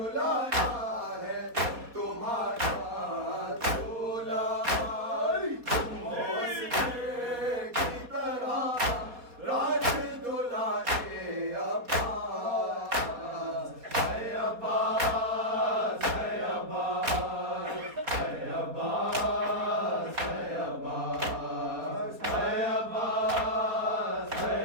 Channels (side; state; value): left; late; 4.2 ms